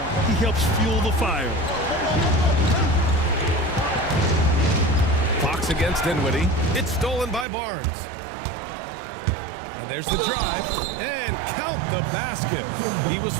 he helps fuel the fire. Fox against Dinwiddie. It's stolen by Barnes. And there's the drive. And count the basket. He was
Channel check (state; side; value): drops out; left; at 7.5 s